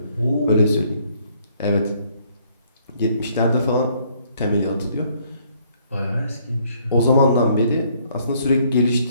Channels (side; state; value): both; inverted; correlation -0.66